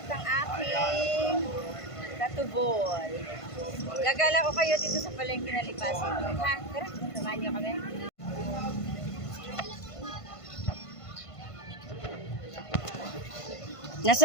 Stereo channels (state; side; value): late; right; 1.5 ms